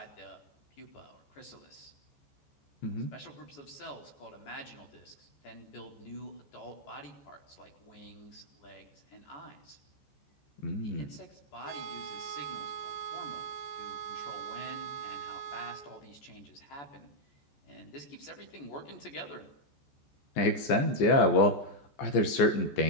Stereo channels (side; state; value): right; late; 14 ms